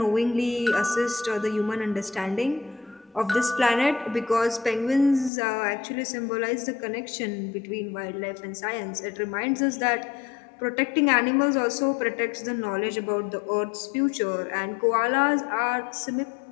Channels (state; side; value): drops out; right; at 5.3 s